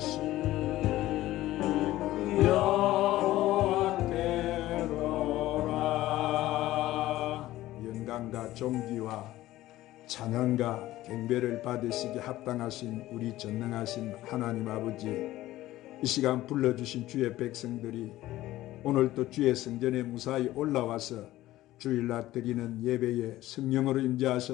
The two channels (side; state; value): right; quieter; 15.7 dB